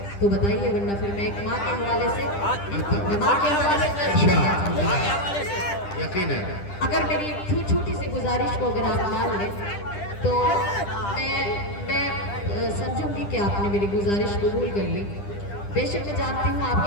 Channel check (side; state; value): right; late; 10 ms